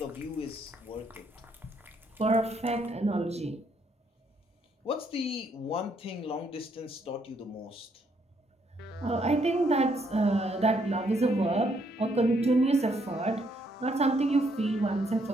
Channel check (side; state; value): both; normal; correlation 0.71